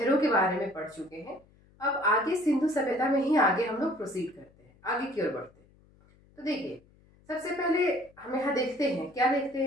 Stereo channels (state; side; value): noise; left; hum, 30 dB below the sound